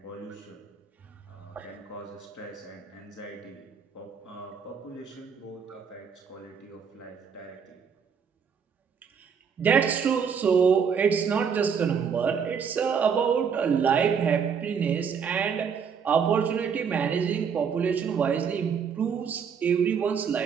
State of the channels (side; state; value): left; quieter; 6.6 dB